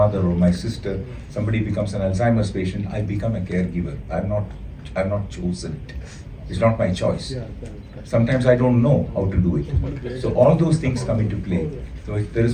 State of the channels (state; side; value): identical; both; correlation 1.00